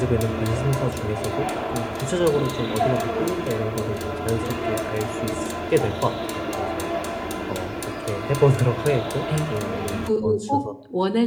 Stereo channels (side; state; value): both; identical; correlation 1.00